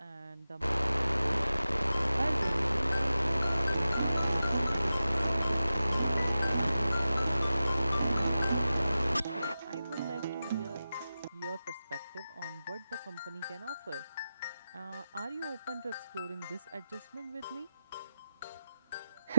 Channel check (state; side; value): inverted; both; correlation -0.93